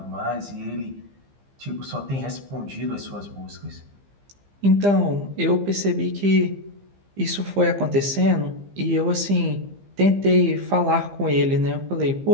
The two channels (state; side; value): late; left; 15 ms